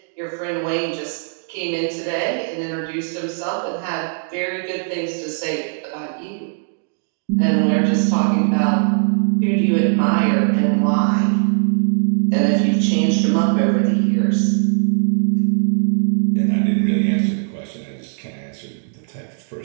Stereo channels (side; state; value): left; silent; digital silence